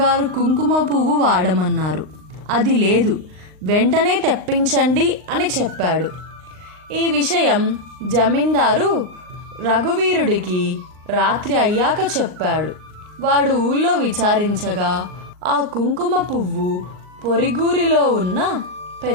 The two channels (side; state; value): left; late; 38 ms